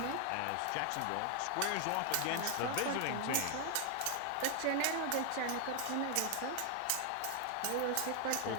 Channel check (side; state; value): both; different; correlation 0.00